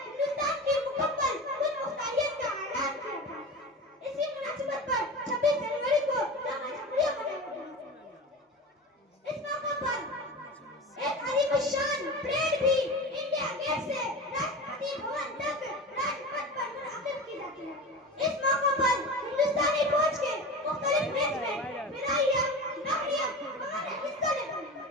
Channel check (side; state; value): both; normal; correlation 0.30